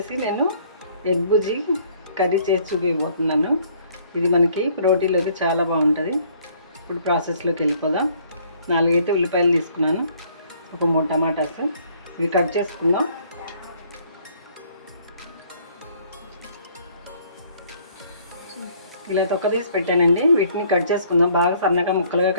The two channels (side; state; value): both; inverted; correlation -0.61